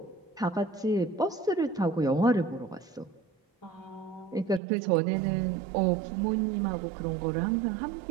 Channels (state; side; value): drops out; left; at 4.6 s